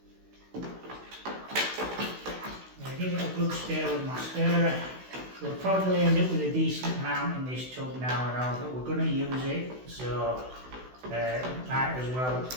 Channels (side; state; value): left; late; 16 ms